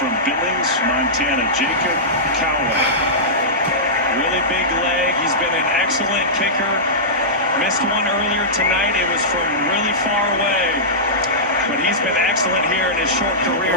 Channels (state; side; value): normal; both; correlation -0.15